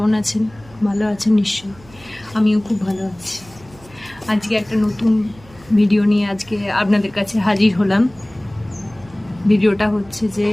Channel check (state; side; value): noise; right; hum, 24 dB below the sound